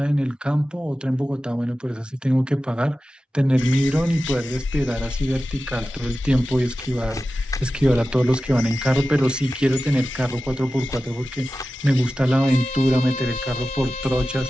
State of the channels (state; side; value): normal; both; correlation 0.94